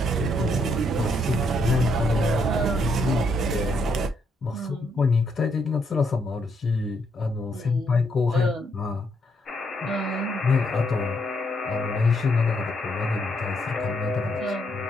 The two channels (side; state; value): both; normal; correlation 0.75